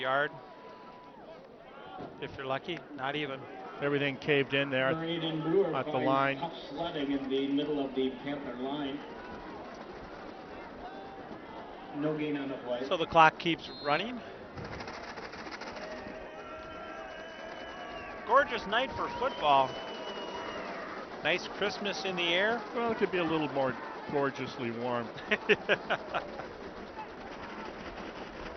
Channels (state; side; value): identical; both; correlation 1.00